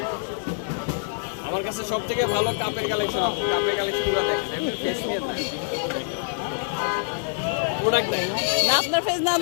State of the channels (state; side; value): silent; right; digital silence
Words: আমার কাছে সব থেকে ভালো কাপের কালেকশন। কাপের কালেকশনগুলো দেখেন, না আপনার ফেস না